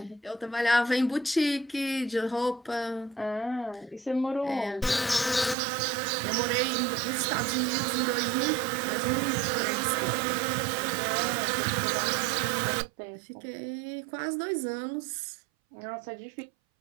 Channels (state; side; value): drops out; left; at 5.6 s